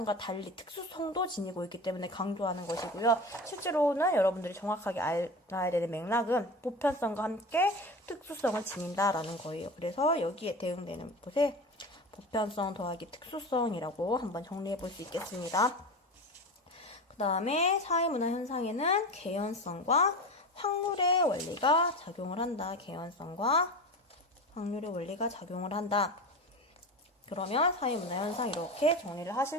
달리 특수성도 지니고 있기 때문에 강조하는 것이고요. 실제로는 여러분들이 정확하게 알아야 되는 맥락은 보편성과 함께 특수성을 지닌다 라는 거예요. 그래서 여기에 대응되는 것에 보편성 더하기 특수성이라고 한번 정리해 볼 수 있겠습니다. 그 다음에 사회문화 현상에는 개연성과 확률의 원리가 작용을 한다. 개연성과 확률의 원리가 작용을 한다. 그러면 사회문화현상 이렇게 정리를 하실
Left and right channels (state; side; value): normal; both; correlation 0.28